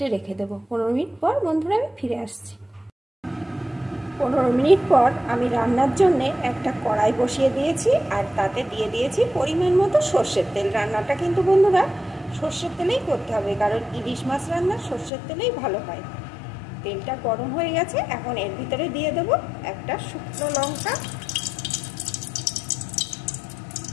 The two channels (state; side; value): drops out; right; at 15.1 s